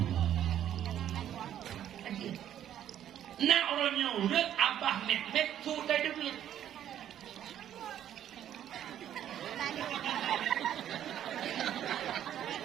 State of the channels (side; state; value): left; quieter; 10.7 dB